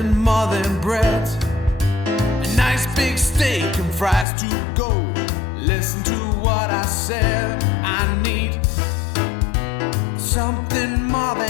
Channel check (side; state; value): right; drops out; at 4.2 s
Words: more than bread, a nice big steak and fries to go. Listen to what I said, I need something more